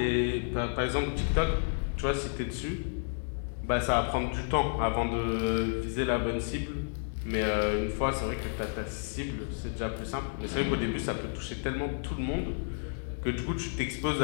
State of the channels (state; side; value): silent; right; digital silence